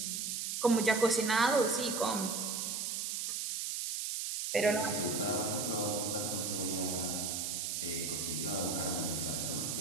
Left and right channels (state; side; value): noise; right; hiss, 2 dB below the sound